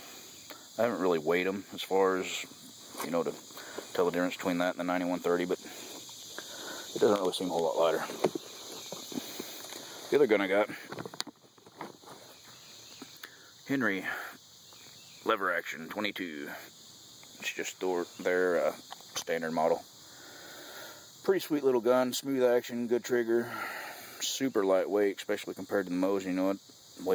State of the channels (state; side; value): identical; both; correlation 1.00